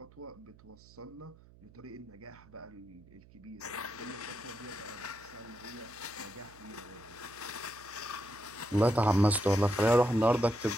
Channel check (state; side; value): noise; right; hum, 24 dB below the sound